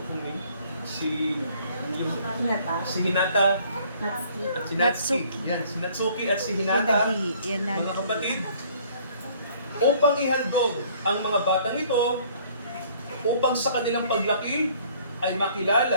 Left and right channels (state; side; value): inverted; both; correlation -0.58